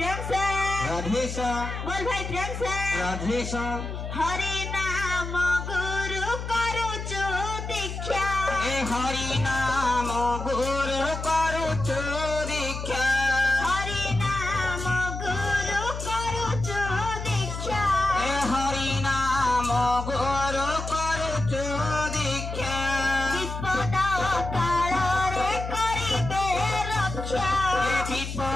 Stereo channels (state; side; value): noise; left; hum, 6 dB below the sound